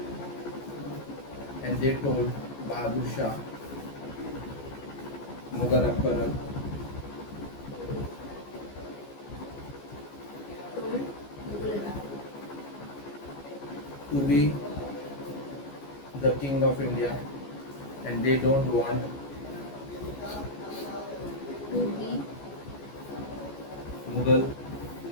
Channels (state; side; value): late; right; 14 ms